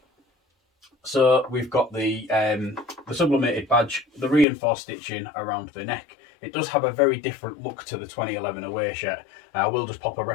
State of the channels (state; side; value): drops out; right; at 4.5 s